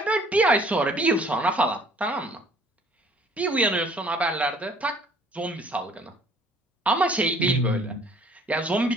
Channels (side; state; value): both; normal; correlation 0.56